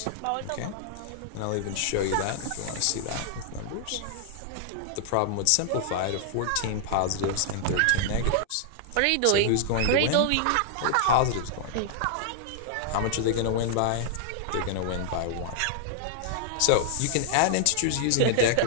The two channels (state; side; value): different; both; correlation -0.01